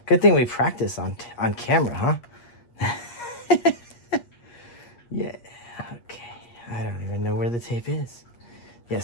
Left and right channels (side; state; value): right; late; 8.4 ms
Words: Good thing we practice on camera, huh? Yeah. Okay. I don't even know where the tape is. Yeah.